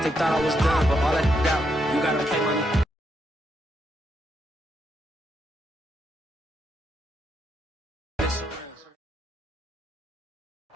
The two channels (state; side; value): normal; both; correlation 0.80